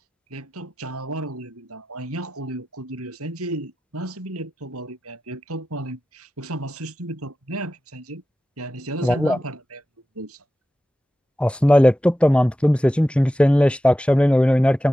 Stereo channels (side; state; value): both; normal; correlation 0.93